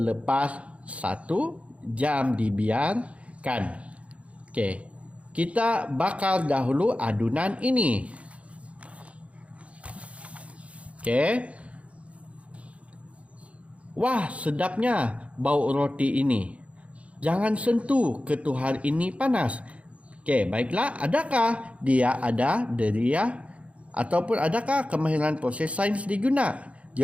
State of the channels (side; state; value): left; late; 0.063 ms